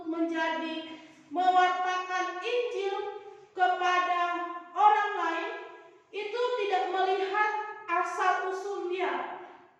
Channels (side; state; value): both; identical; correlation 1.00